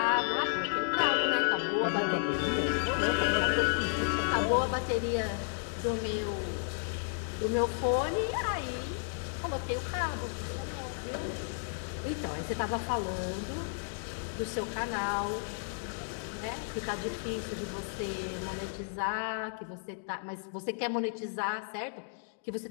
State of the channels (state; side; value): silent; right; digital silence